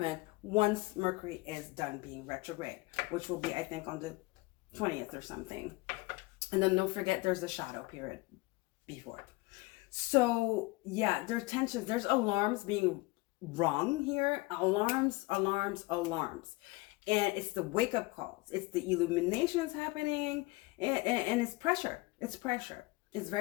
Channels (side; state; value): right; quieter; 23.3 dB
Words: once Mercury is done being retrograde, which will be, I think, on the 20th or something. And then don't forget there's the shadow period before. So yeah, there's tensions, there's alarms being rung here. Alarms. And it's the wake up calls. It's the illuminations happening, and it's pressure. It's pressure. It's